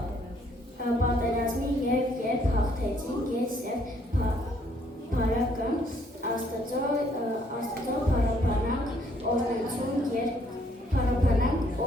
պատերազմի և երբ հաղթեցինք ես և Փարակը Աստծո փարապանանք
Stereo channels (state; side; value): normal; both; correlation 0.66